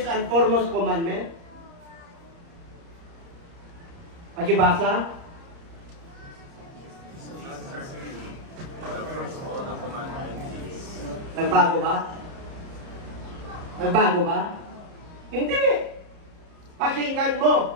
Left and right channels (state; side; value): late; left; 30 ms